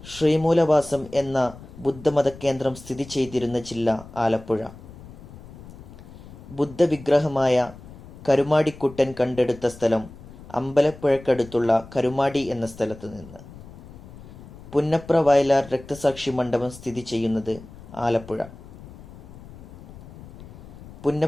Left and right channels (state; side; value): noise; left; rumble, 17 dB below the sound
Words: ശ്രീമൂലവാസം എന്ന ബുദ്ധമത കേന്ദ്രം സ്ഥിതി ചെയ്തിരുന്ന ജില്ല ആലപ്പുഴ. ബുദ്ധവിഗ്രഹമായ കരുമാടിക്കുട്ടൻ കണ്ടെടുത്ത സ്ഥലം അമ്പലപ്പുഴക്കടുത്തുള്ള കരുമാടി എന്ന സ്ഥലത്ത് നിന്ന്. പുന്നപ്ര വയലാർ രക്തസാക്ഷി മണ്ഡപം സ്ഥിതി ചെയ്യുന്നത് ആലപ്പുഴ.